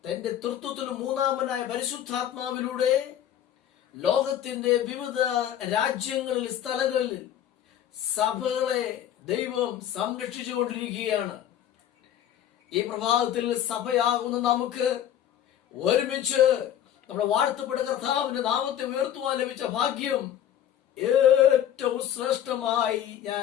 തന്റെ തൃത്വത്തിൽ മൂന്നാമനായ പരിശുദ്ധാത്മാവിലൂടെ ലോകത്തിന്റെ വിവിധ രാജ്യങ്ങളിൽ, സ്ഥലങ്ങളിൽ സഭകളെ ദൈവം സംരക്ഷിച്ചുകൊണ്ടിരിക്കുകയാണ്. ഈ പ്രഭാതത്തിൽ സഭയാകുന്ന നമുക്ക് ഒരുമിച്ച് നമ്മുടെ വാഴ്ത്തപ്പെട്ട കർത്താവിന്റെ നാമത്തെ ഉയർത്തുവാൻ ലഭിച്ച ഭാഗ്യം ഏറ്റവും ശ്രേഷ്ഠമായി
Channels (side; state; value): right; quieter; 10.6 dB